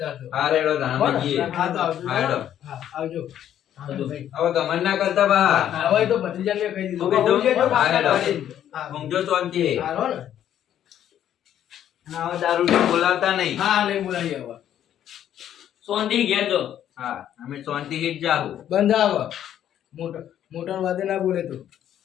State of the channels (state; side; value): quieter; right; 10.7 dB